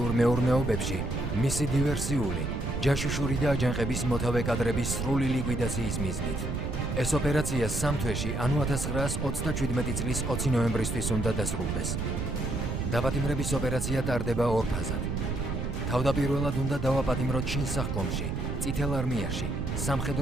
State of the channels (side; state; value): right; noise; rumble, 2 dB below the sound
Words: მეურნეობებში, მისი დივერსიული, ჯაშუშური და აჯანყების მოთავე კადრების სრული ლიკვიდაციის მიზნით. ეს ოპერაცია 3 თვეში, ანუ 1927 წლის 20 ნოემბრისთვის უნდა დასრულდეს. დაპატიმრების ოპერაცია ტარდება ორ ფაზად. თავდაპირველად უნდა დავაპატიმროთ შინსახკომში, წითელ არმიაში,